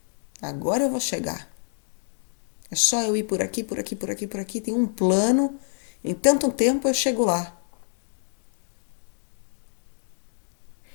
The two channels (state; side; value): silent; right; digital silence